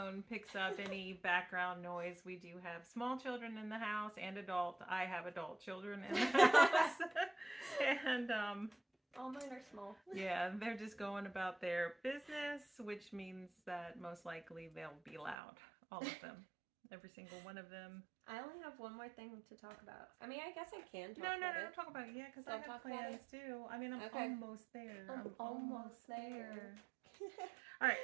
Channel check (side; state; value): left; drops out; at 15.4 s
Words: picks up any background noise. We do have small children in the house and adult. I have adult children in the house. And All mine are small. yeah, they're just going about their business, which means that most likely they'll be loud. All of them. Every single one of them. I only have one more thing to talk about. I mean, I guess I can talk No, about don't talk about it yet because I Don't have talk about plans too. I mean, I'm Okay. almost there. I'm almost there. All right.